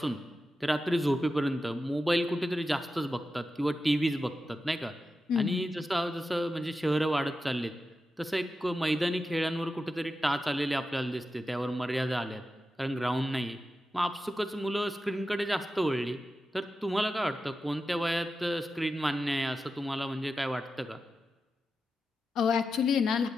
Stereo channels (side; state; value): both; normal; correlation 0.91